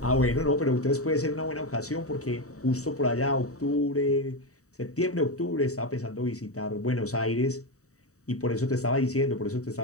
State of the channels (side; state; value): right; late; 0.65 ms